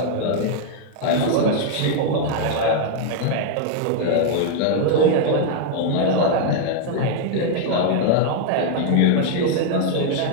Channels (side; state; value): both; different; correlation 0.00